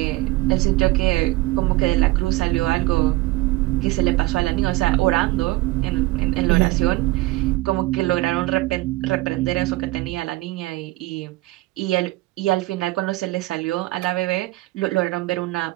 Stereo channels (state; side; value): quieter; left; 19.6 dB